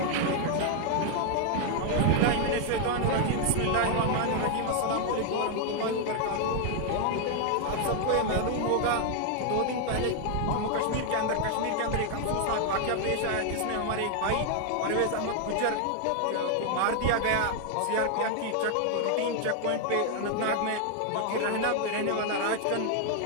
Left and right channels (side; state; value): both; different; correlation 0.00